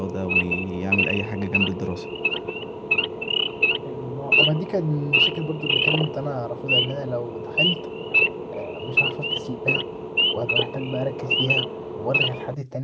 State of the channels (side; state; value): both; identical; correlation 1.00